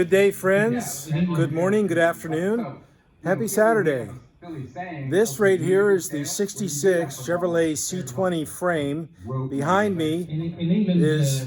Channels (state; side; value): identical; both; correlation 1.00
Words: day, friends. Good morning, good afternoon. Happy Saturday. This right here is the 66 Chevrolet C-20 frame. Behind me